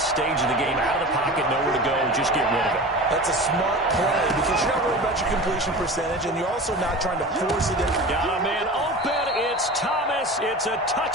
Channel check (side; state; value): both; normal; correlation 0.33